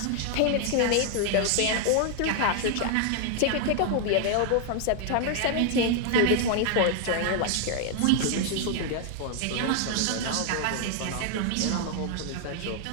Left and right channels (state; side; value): different; both; correlation 0.00